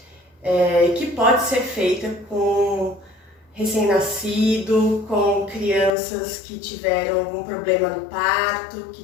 que pode ser feita com recém-nascido, com crianças que tiveram algum problema no parto, que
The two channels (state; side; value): drops out; right; at 5.9 s